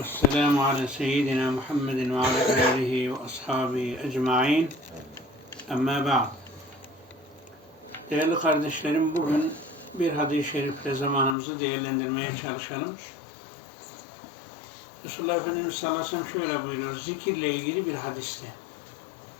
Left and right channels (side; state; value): right; drops out; at 11.4 s